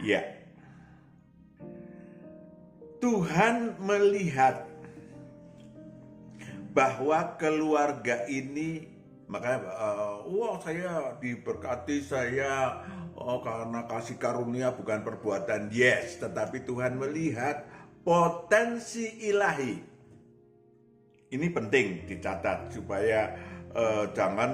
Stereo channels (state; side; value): identical; both; correlation 1.00